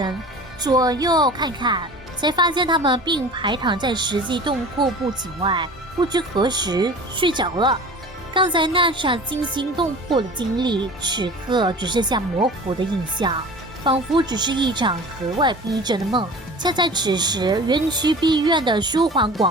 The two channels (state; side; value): normal; both; correlation 0.40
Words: 左右看看，才发现他们并排躺在实际洞窟不景外，不知何时睡着了。刚才那场惊心动魄的经历，此刻只剩下模糊的印象，仿佛只是一场格外逼真的梦。恰在此时，园区碧苑的舒缓